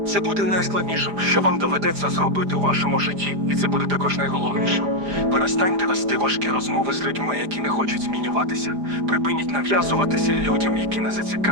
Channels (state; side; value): late; left; 4.9 ms